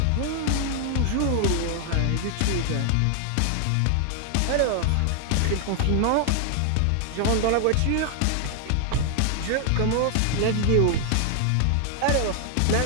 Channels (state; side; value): different; both; correlation 0.00